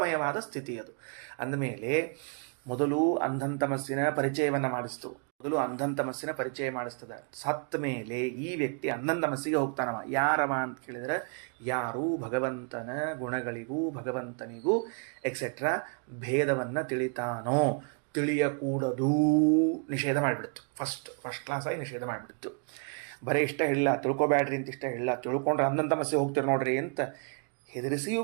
ಸ್ಥಿತಿ ಅದು. ಅಂದಮೇಲೆ ಮೊದಲು ಅಂಧಂತಮಸ್ಸಿನ ಪರಿಚಯವನ್ನು ಮಾಡಿಸ್ತದೆ. ಸತ್ತ ಮೇಲೆ ಈ ವ್ಯಕ್ತಿ ಅಂಧಂತಮಸ್ಸಿಗೆ ಹೋಗ್ತಾನವ. ಯಾರವ ಅಂತ ಕೇಳಿದರೆ, ಯಾರು ಭಗವಂತನ ಗುಣಗಳಿಗೂ ಭಗವಂತನಿಗೂ ಎಕ್ಸೆಟ್ರಾ ಭೇದವನ್ನು ತಿಳಿತಾನೋ, ತಿಳಿಯಕೂಡದು ನಿಷೇಧ ಮಾಡಿಬಿಡ್ತು. ಫಸ್ಟ್ ಕ್ಲಾಸಾಗಿ ನಿಷೇಧ ಮಾಡಿಬಿಡ್ತು. ಬರೀ ಇಷ್ಟ ಹೇಳಿಲ್ಲ, ತಿಳ್ಕೊಬ್ಯಾಡ್ರಿ ಅಂತ ಇಷ್ಟ ಹೇಳಿಲ್ಲ, ತಿಳ್ಕೊಂಡ್ರೆ ಅಂಧಂತಮಸ್ಸಿಗೆ ಹೋಗ್ತೀರಿ ನೋಡ್ರಿ ಅಂತ ಹೆದರಿಸಿಯೂ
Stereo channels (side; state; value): left; quieter; 39.7 dB